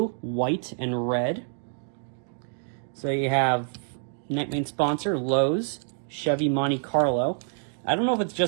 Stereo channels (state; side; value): silent; left; 60 dB below the other